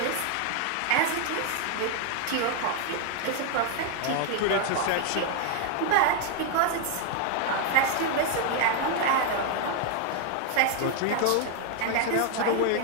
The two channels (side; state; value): both; different; correlation 0.00